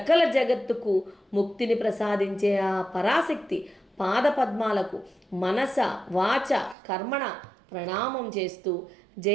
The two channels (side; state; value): left; drops out; at 6.8 s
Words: జగత్తుకు ముక్తిని ప్రసాదించే ఆ పరాశక్తి పాదపద్మాలకు మనస వాచ కర్మణ ప్రణామం చేస్తూ